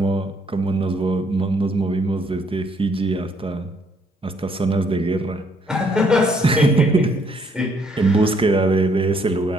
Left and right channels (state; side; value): normal; both; correlation 0.68